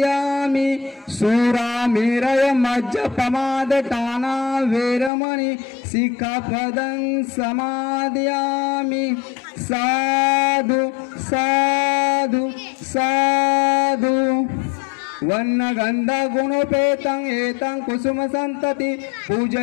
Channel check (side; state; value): right; drops out; at 5.1 s